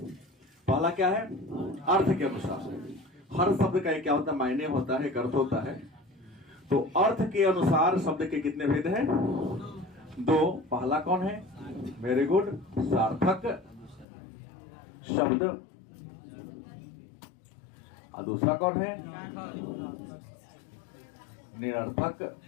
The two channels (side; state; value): right; drops out; at 14.1 s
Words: पहला क्या है? अर्थ के अनुसार। हर शब्द का एक क्या होता है? मायने होता है, एक अर्थ होता है। तो अर्थ के अनुसार शब्द के कितने भेद हैं? दो। पहला कौन है? वेरी गुड, सार्थक शब्द। और दूसरा कौन है? निरर्थक